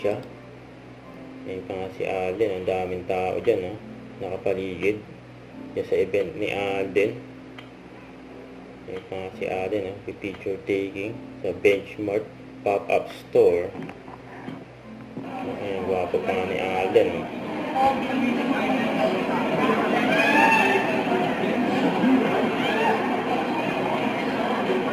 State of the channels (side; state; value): both; identical; correlation 1.00